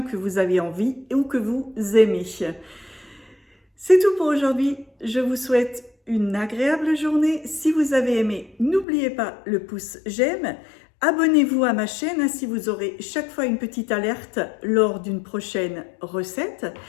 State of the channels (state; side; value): drops out; right; at 8.8 s